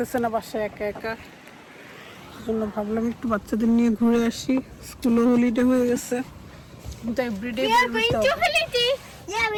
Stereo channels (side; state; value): both; identical; correlation 1.00